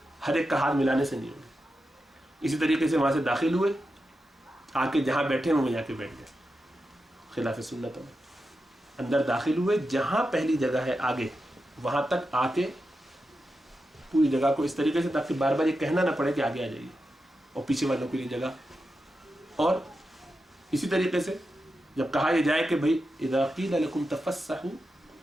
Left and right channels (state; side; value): normal; both; correlation 0.89